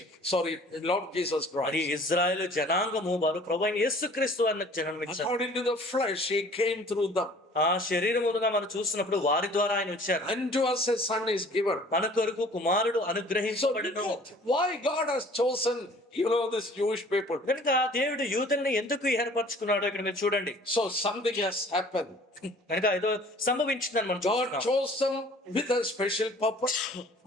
Sorry, Lord Jesus అది Christ. Israel జనాంగము వారు ప్రభువైన యేసుక్రీస్తు అన్న జన్మనిచ్చారు. According to the flesh, he came through them. ఆ శరీరముగా మనం చూసినప్పుడు వారి ద్వారా ఆయన వచ్చారు. Unto us a son is given. మన కొరకు కుమారుడు So అనుగ్రహించబడును. why God has chosen, this Jewish people? కనుక దేవుడు యూదుల్ని ఎందుకు ఏర్పరచుకున్నాడో ఇక్కడ మీరు చూడండి. So something has happened. కనుక ఏదో సంభవించిందని మనం God చూస్తున్నాం. chose them with a special purpose.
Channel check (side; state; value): both; normal; correlation 0.51